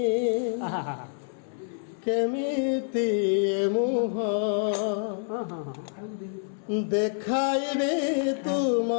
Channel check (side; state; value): right; silent; 58 dB below the other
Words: কেমিতি মুহ দেখাইবি তুম